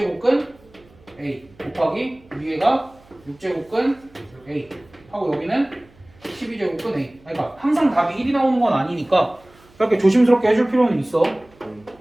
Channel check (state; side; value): noise; right; hum, 29 dB below the sound